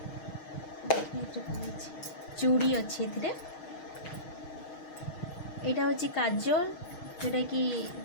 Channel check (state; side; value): late; right; 6.4 ms